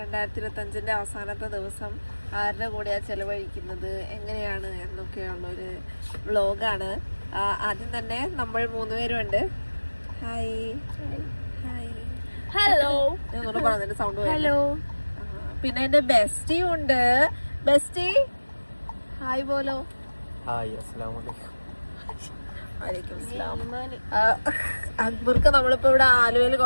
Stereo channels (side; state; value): both; inverted; correlation -1.00